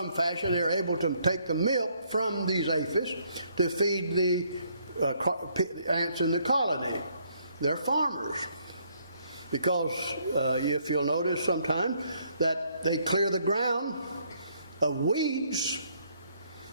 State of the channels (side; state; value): both; inverted; correlation -0.69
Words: fashion they're able to take the milk from these aphis to feed the ants in the colony. They're farmers. Because if you'll notice sometime that they clear the ground of weeds,